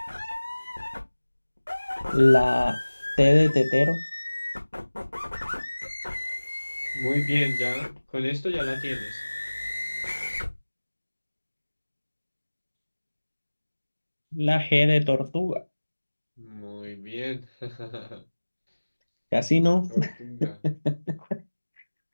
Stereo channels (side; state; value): both; inverted; correlation -1.00